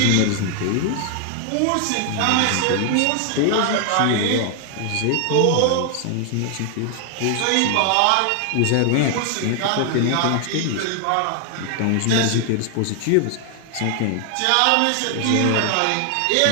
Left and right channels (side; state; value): both; different; correlation 0.00